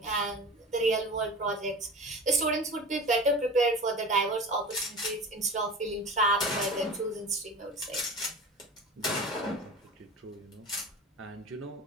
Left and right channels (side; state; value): both; normal; correlation 0.34